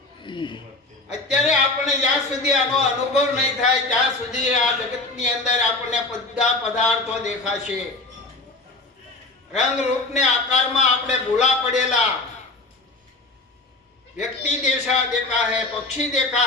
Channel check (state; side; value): quieter; right; 3.2 dB